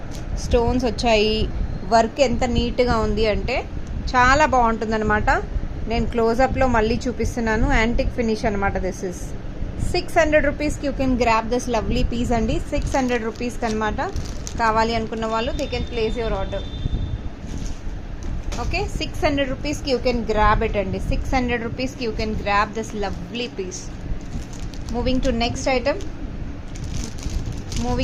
స్టోన్స్ వచ్చాయి, వర్క్ ఎంత నీట్గా ఉంది అంటే చాలా బాగుంటుంది అనమాట. నేను క్లోజప్లో మళ్ళీ చూపిస్తున్నాను. యాంటిక్ ఫినిష్ అనమాట. దిస్ ఇస్ 600 రూపీస్కి you can grab this lovely piece అండి. 600 రూపీస్కి అనమాట. కావాలి అనుకున్న వాళ్ళు they can place your order. Okay, 600 రూపీస్కి యూ కెన్ గ్రాబ్ ఇట్ అండి. 600 రూపీస్కి you can grab this lovely piece. Moving to next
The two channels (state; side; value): identical; both; correlation 1.00